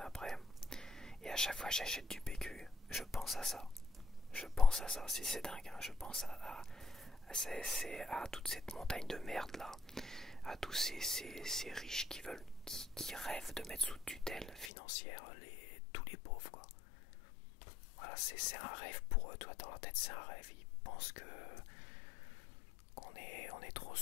après. Et à chaque fois que j'achète du PQ, je pense à ça. C'est dingue, hein. Je pense à toute cette montagne de merde là, à tous ces riches qui rêvent de mettre sous tutelle financière tous les pauvres, quoi. Voilà, c'est un rêve pour eux, toi dans la tête c'est un rêve. Ils pensent qu'on est trop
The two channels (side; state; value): right; drops out; at 14.7 s